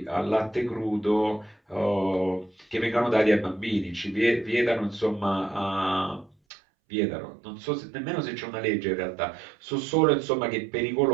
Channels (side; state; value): left; drops out; at 6.4 s